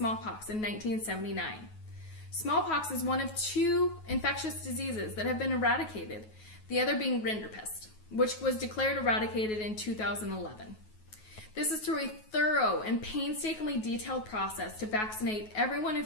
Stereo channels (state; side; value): late; right; 9.3 ms